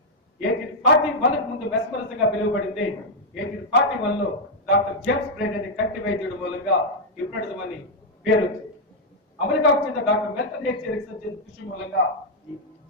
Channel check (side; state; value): both; normal; correlation -0.02